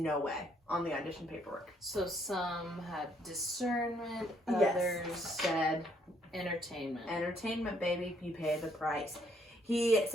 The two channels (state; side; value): normal; both; correlation 0.68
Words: way on the audition paperwork. So some had discernment, others said entertainment. Entertainment, baby, you pay the price. He